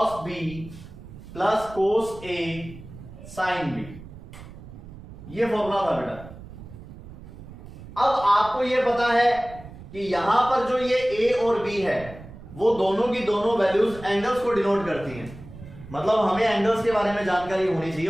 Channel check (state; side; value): noise; right; rumble, 16 dB below the sound